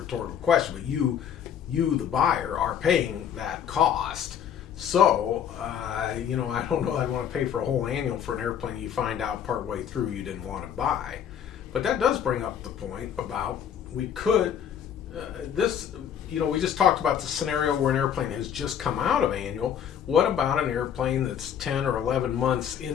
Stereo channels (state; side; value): quieter; right; 8.8 dB